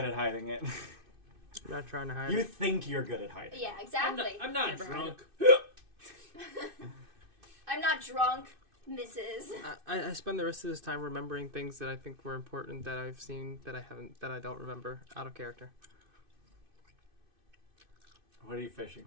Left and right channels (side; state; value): left; late; 2.6 ms